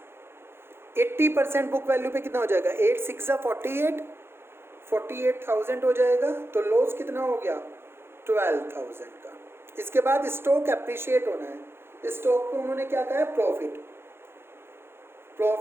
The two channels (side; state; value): left; late; 0.11 ms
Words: 80% बुक वैल्यू पे कितना हो जाएगा? 8 6 48, 48,000 हो जाएगा। तो लॉस कितना हो गया? 12,000 का। इसके बाद स्टॉक एप्रिशिएट होना है। स्टॉक को उन्होंने क्या कहा है? Profit,